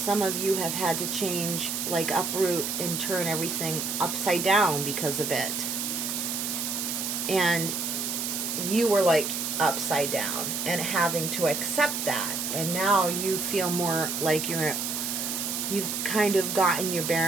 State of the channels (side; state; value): right; noise; hiss, 2 dB below the sound